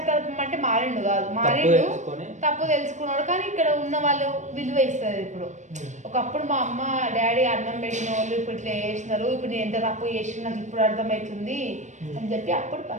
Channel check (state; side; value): late; left; 0.35 ms